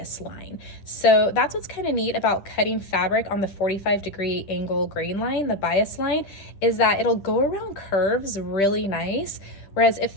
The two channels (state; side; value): late; right; 10 ms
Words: line. So that's what's kind of neat about cutting fabric on the 45-degree angle grain line, the bias line, is that it'll go around curves really nice. Whereas if